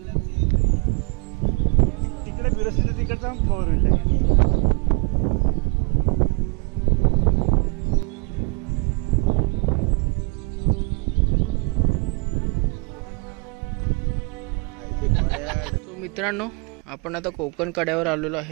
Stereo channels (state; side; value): quieter; left; 32.0 dB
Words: तिकडे फिरत तिकडचा कव्हर होईल. सो मित्रांनो, आपण आता कोकण कड्यावर आलेलो